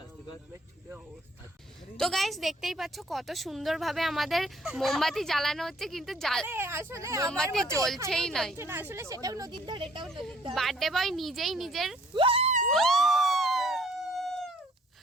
আস্তে কর। তো গাইস দেখতেই পাচ্ছ কত সুন্দরভাবে আমাদের মোমবাতি জ্বালানো হচ্ছে, কিন্তু আসলে মোমবাতি জ্বলছেই নাই। আসলে সেটাও নদীর ধারে, এটাও নদীর ধারে। বার্থডে বয় নিজেই নিজের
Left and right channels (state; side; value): normal; both; correlation 0.60